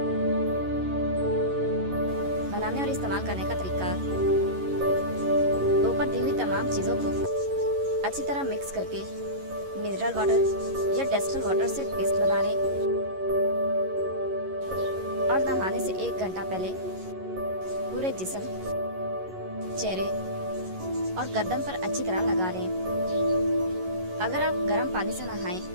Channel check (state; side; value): late; left; 11 ms